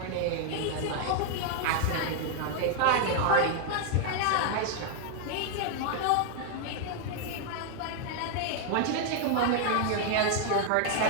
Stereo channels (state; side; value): different; both; correlation 0.00